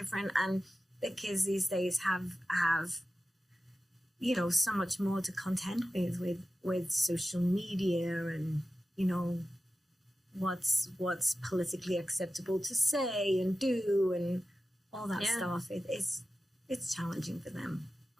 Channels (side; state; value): both; normal; correlation 0.93